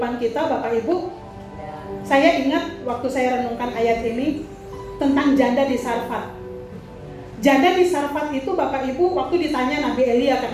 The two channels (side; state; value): both; identical; correlation 1.00